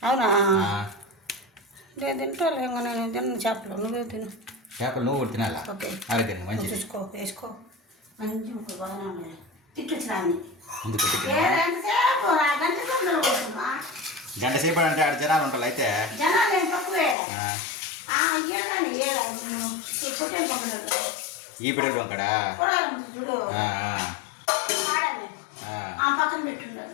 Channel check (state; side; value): drops out; right; at 17.2 s